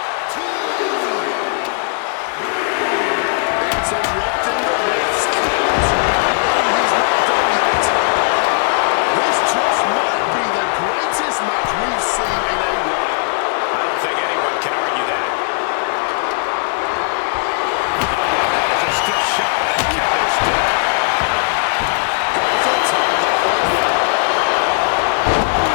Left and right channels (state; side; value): silent; right; 60 dB below the other